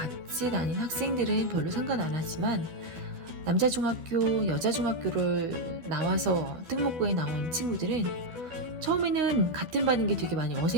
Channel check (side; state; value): left; late; 12 ms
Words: 다닌 학생들은 별로 상관 안 하지만, 남자 중학교, 여자 중학교를 나와서 특목고에 나온 친구들은 처음에는 같은 반인 게 되게 많이